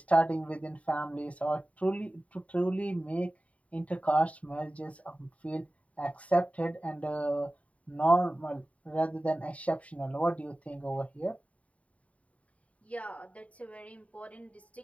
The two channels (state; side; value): late; right; 0.067 ms